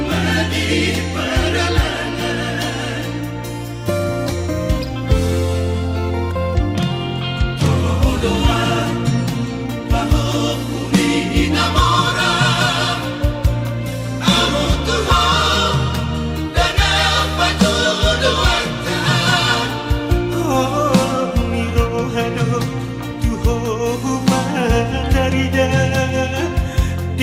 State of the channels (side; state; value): both; identical; correlation 1.00